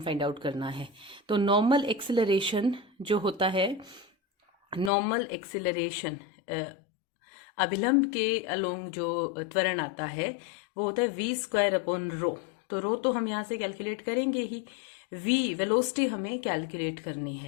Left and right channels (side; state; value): right; drops out; at 4.9 s